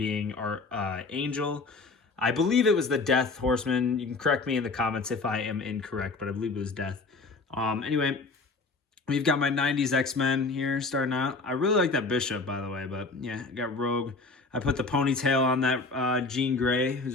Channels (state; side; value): quieter; right; 3.8 dB